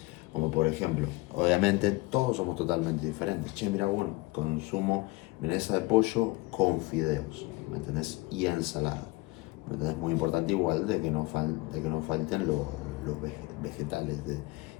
Como por ejemplo, obviamente todos somos totalmente diferentes. Che, mira, bueno, consumo milanesa de pollo con fideos, ¿me entendés? Y ensalada. ¿Me entendés? Muy importante igual de que no falten los vegetales,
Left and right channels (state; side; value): quieter; right; 21.9 dB